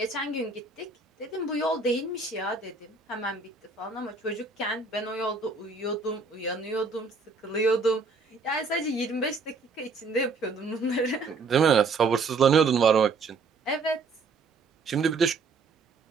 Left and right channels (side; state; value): left; quieter; 4.1 dB